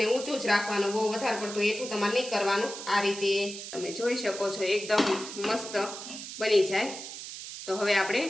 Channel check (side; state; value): right; noise; hiss, 10 dB below the sound